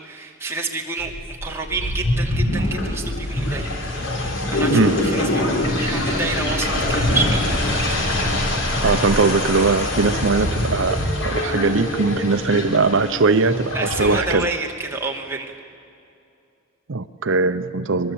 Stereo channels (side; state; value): both; normal; correlation 0.18